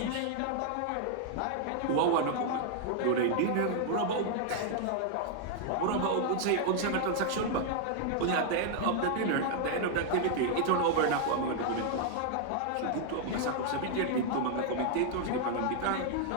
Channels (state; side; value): different; both; correlation 0.00